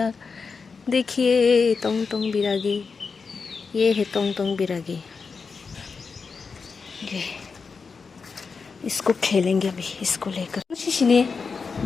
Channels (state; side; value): quieter; right; 5.1 dB